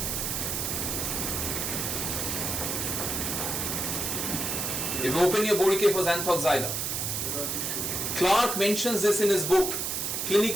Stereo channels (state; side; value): noise; right; hiss, 1 dB below the sound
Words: If you open your Borke for xanthoxylum, Clark mentions this in his book,